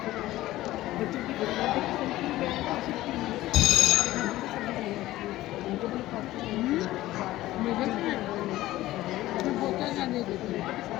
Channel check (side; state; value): right; quieter; 16.1 dB